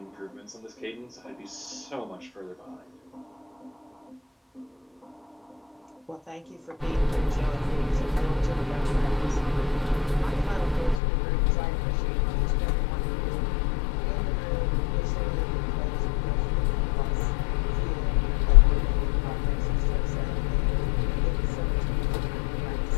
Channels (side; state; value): right; drops out; at 11.0 s